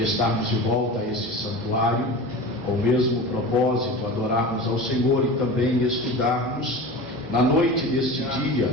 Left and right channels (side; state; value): both; normal; correlation 0.32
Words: estarmos de volta a este santuário, com o mesmo propósito, adorarmos ao Senhor e também estudarmos na noite deste dia